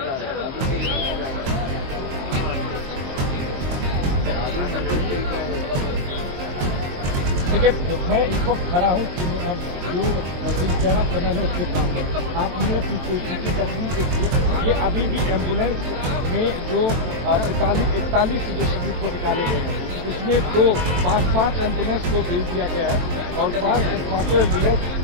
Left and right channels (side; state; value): left; late; 23 ms